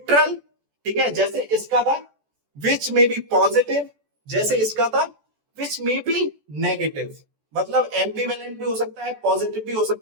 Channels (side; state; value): left; late; 14 ms